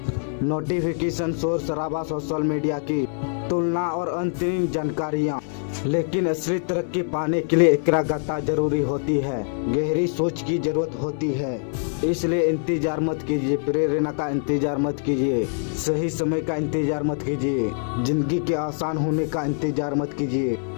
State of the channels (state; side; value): silent; right; digital silence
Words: नोटिफिकेशन, शोर शराबा, सोशल मीडिया की तुलना और अंतहीन जानकारियाँ। लेकिन असली तरक्की पाने के लिए एकाग्रता जरूरी है, गहरी सोच की जरूरत होती है। इसलिए इंतजार मत कीजिए, प्रेरणा का इंतजार मत कीजिए, सही समय का इंतजार मत कीजिए, जिंदगी के आसान होने का इंतजार मत कीजिए।